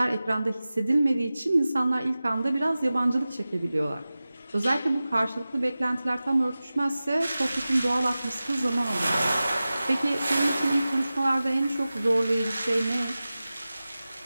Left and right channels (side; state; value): both; inverted; correlation -0.96